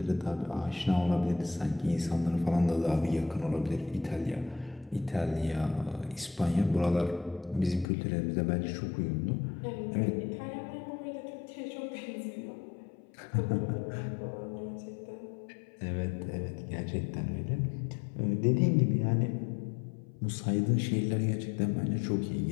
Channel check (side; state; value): right; drops out; at 7.9 s